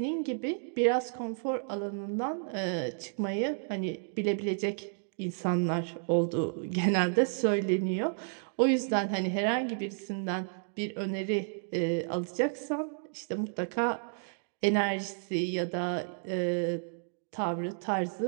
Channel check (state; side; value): silent; left; digital silence